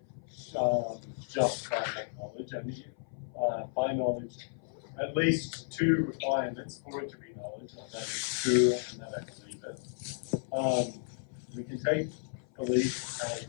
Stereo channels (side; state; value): right; silent; 55 dB below the other